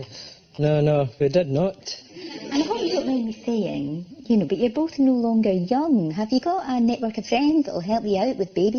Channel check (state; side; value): identical; both; correlation 1.00